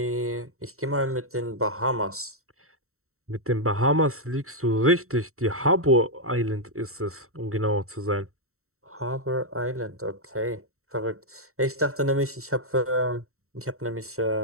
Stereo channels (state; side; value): late; left; 0.63 ms